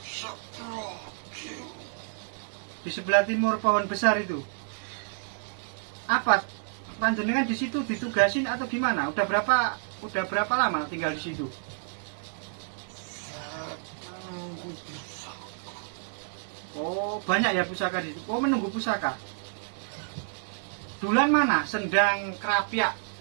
Di sebelah timur pohon besar itu. Apa? Panjenengan di situ ditugasin atau gimana? Udah berapa lama tinggal di situ? Oh, banyak ya pusaka di situ. Oh, menunggu pusaka. Dulan mana? Sendang Kerapia.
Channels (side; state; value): left; silent; 58 dB below the other